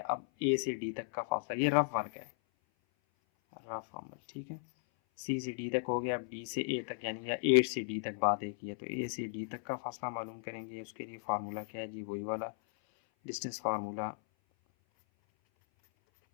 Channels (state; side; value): silent; right; 54 dB below the other